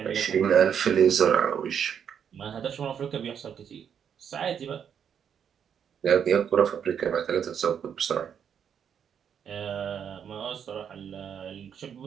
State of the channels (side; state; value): left; quieter; 8.0 dB